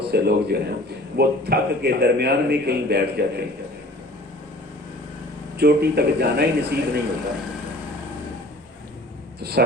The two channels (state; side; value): normal; both; correlation 0.47